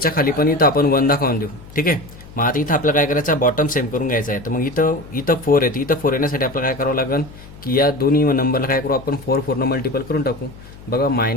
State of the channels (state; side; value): noise; left; hum, 19 dB below the sound